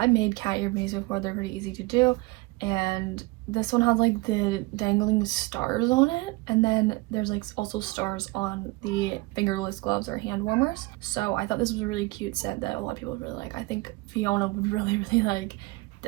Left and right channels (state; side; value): quieter; left; 23.0 dB